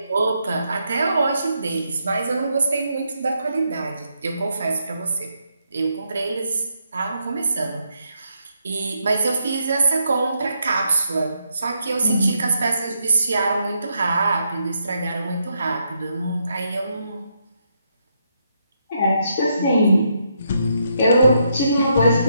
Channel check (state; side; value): inverted; both; correlation -0.79